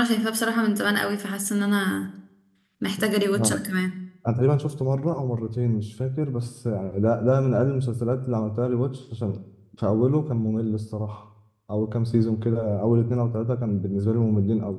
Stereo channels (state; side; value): identical; both; correlation 1.00